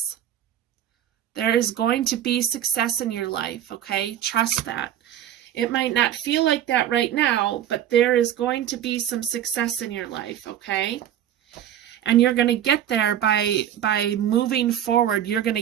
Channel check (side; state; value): left; quieter; 10.7 dB